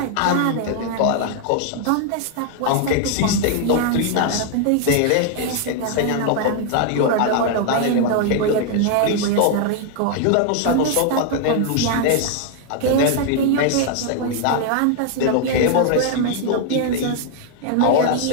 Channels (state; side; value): different; both; correlation 0.00